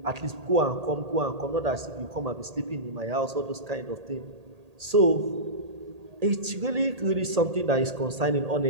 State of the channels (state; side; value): late; left; 1.8 ms